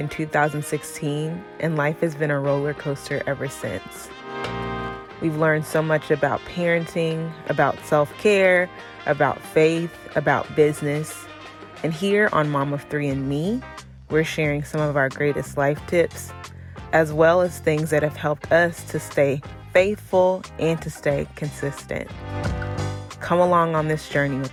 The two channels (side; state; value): both; identical; correlation 1.00